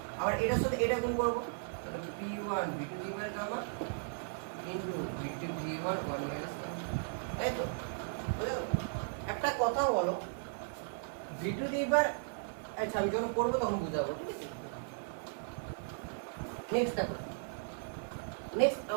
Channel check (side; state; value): left; silent; 54 dB below the other